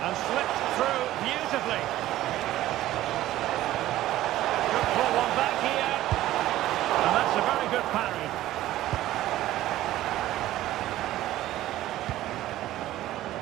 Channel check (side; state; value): left; quieter; 14.7 dB